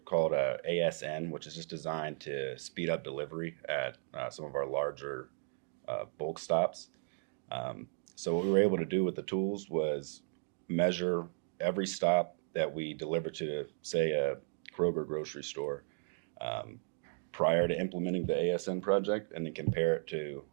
called ASN, which is just designed to speed up delivery at some of our larger bulk stops. So what we were able to do with the tools was measure every stop that we deliver to, say, a Kroger grocery store prior to implementing the ASN project, and then compare it to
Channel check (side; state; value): left; silent; digital silence